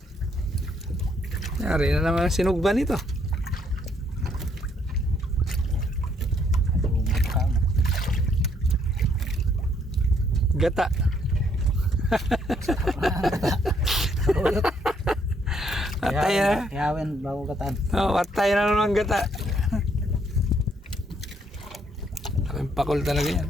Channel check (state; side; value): normal; both; correlation 0.69